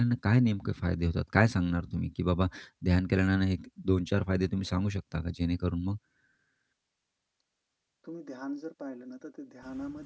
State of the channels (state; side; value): identical; both; correlation 1.00